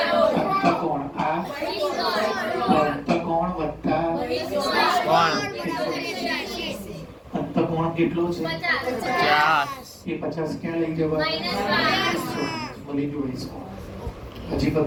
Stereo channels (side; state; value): both; identical; correlation 1.00